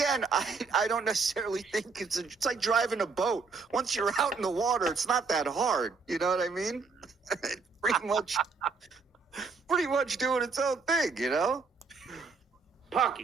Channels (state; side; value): quieter; left; 4.6 dB